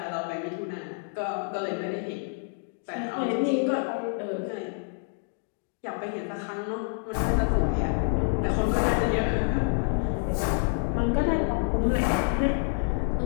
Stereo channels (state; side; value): silent; right; 60 dB below the other